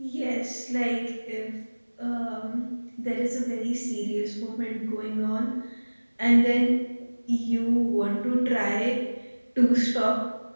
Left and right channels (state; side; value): inverted; both; correlation -1.00